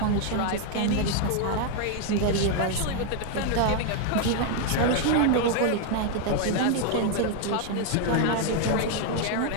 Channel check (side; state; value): both; different; correlation 0.00